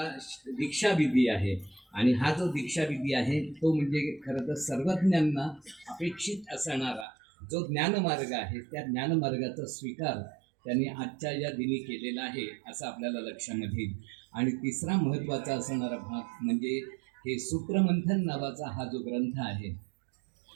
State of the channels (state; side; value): drops out; left; at 7.1 s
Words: दीक्षाविधी आहे आणि हा जो दीक्षाविधी आहे तो म्हणजे खरं तर सर्वज्ञांना अपेक्षित असणारा जो ज्ञानमार्ग आहे त्या ज्ञानमार्गाचा स्वीकार त्यांनी आजच्या या दिनी केलेला आहे असं आपल्याला लक्षामध्ये येईल. आणि तिसरा महत्त्वाचा असणारा भाग म्हणजे हे सूत्रमंथन नावाचा हा जो ग्रंथ आहे,